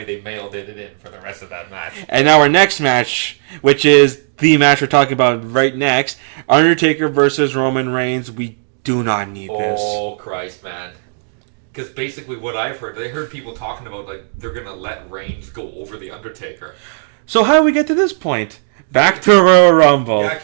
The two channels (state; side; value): silent; left; digital silence